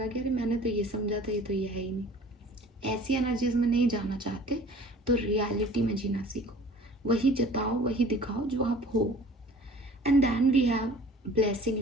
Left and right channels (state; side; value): normal; both; correlation 0.47